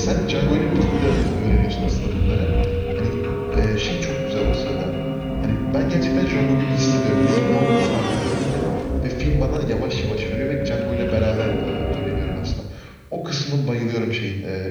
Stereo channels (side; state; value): both; identical; correlation 1.00